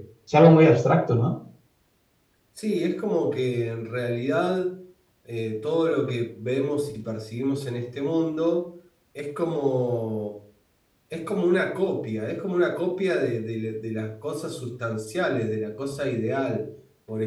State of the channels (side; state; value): both; identical; correlation 1.00